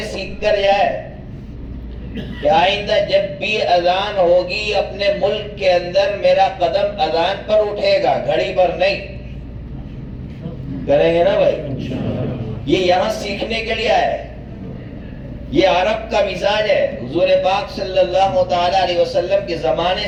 سیکھ کر جائے کہ آئندہ جب بھی اذان ہوگی اپنے ملک کے اندر میرا قدم اذان پر اٹھے گا، گھڑی پر نہیں۔ کریں گے نا بھائی؟ یہ یہاں سیکھنے کے لیے آئے۔ یہ عرب کا مزاج ہے۔ حضور پاک صلی اللہ تعالی علیہ وسلم کے زمانے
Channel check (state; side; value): identical; both; correlation 1.00